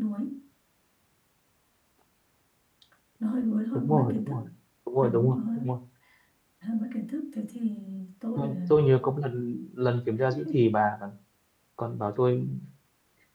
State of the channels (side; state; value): both; identical; correlation 1.00